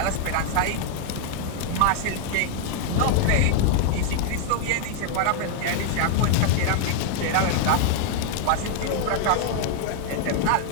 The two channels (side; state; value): both; different; correlation 0.00